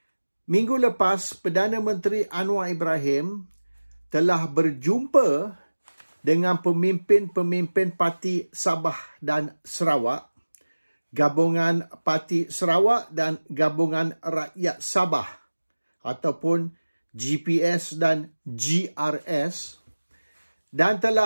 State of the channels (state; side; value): inverted; both; correlation -1.00